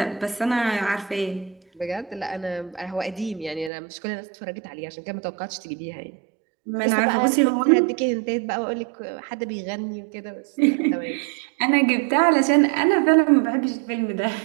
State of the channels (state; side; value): drops out; left; at 3.7 s